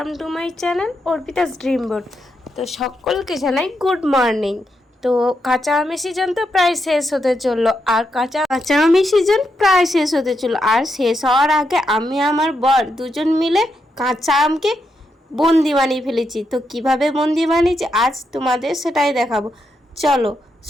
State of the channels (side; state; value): both; normal; correlation 0.83